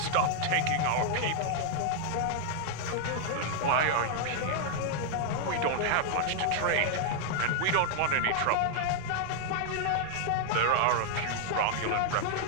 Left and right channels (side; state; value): both; different; correlation 0.00